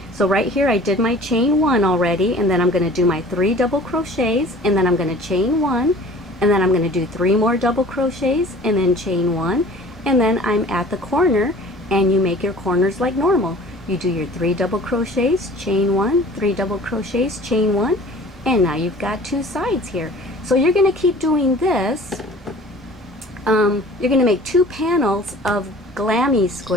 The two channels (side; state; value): right; noise; hum, 28 dB below the sound